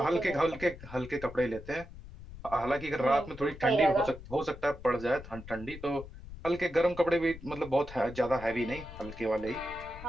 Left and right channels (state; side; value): noise; left; rumble, 15 dB below the sound